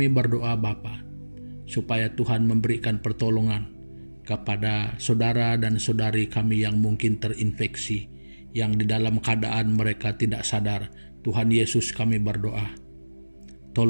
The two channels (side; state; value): both; inverted; correlation -1.00